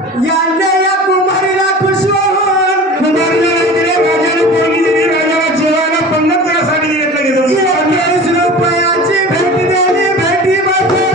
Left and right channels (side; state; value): both; normal; correlation 0.38